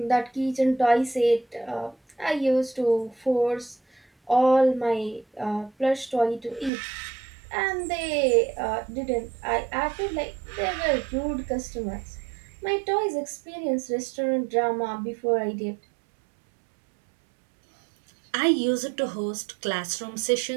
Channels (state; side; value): drops out; left; at 6.7 s